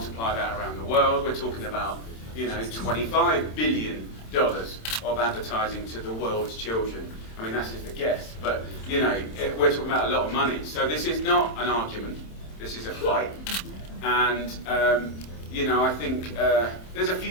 that around the world, we're talking about, $25 billion of advertising to the world's children. I mean, that's just a guess, but, we're talking about a lot of money. So this is not an argument, this is a fight. And, I think there's a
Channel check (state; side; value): late; right; 27 ms